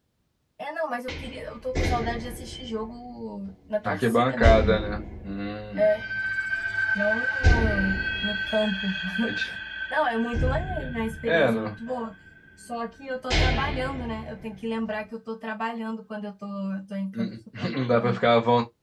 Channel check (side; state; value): both; identical; correlation 1.00